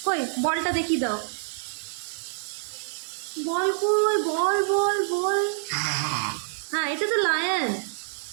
কই বলটা দেখিয়ে দাও। বল কই? বল বল বল। হ্যাঁ এটা তো লায়ন।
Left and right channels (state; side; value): silent; left; digital silence